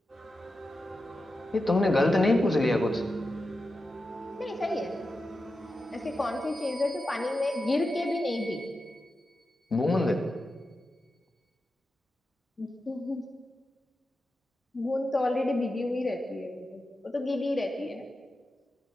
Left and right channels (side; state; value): both; normal; correlation 0.90